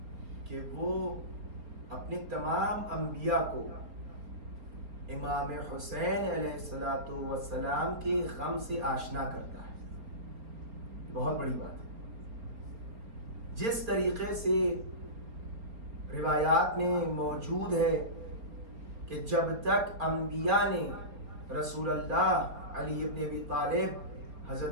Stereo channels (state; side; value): late; left; 4.3 ms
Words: کہ وہ اپنے تمام انبیاء کو امام حسین علیہ السلام کے غم سے آشنا کرتا ہے. بہت بڑی بات ہے. جس طریقے سے روایات میں موجود ہے کہ جب تک انبیاء نے رسول اللہ علی ابن ابی طالب